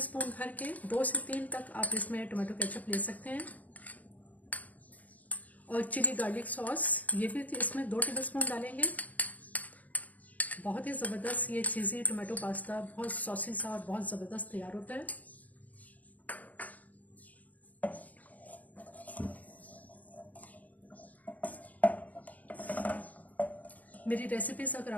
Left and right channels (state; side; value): late; right; 0.076 ms